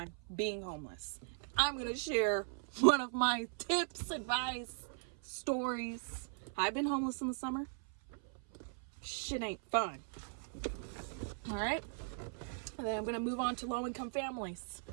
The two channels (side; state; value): left; silent; 52 dB below the other